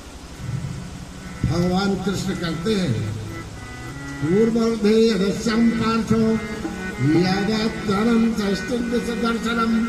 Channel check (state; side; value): identical; both; correlation 1.00